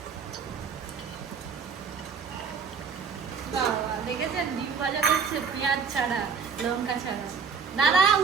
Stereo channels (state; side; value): quieter; left; 5.8 dB